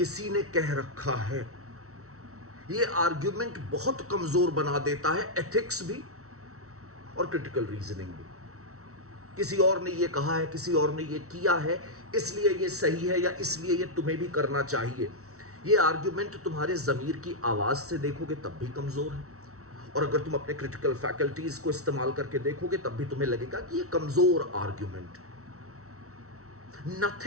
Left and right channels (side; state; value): left; late; 0.64 ms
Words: ने कह रखा है। ये आर्ग्यूमेंट बहुत कमज़ोर बना देता है, एथिक्स भी और क्रिटिकल रीजनिंग भी। किसी और ने ये कहा है, किसी और ने ये किया है, इसलिए ये सही है या इसलिए ये तुम्हें भी करना चाहिए। ये आर्ग्यूमेंट तुम्हारे ज़मीर की आवाज़ से देखोगे तब भी कमज़ोर है, और अगर तुम अपने क्रिटिकल फैकल्टीज़ को इस्तेमाल करके देखोगे तब भी तुम्हें लगेगा कि ये कमज़ोर argument.